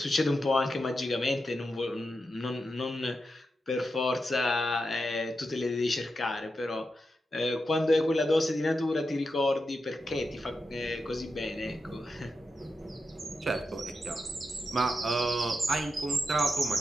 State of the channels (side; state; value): both; normal; correlation 0.88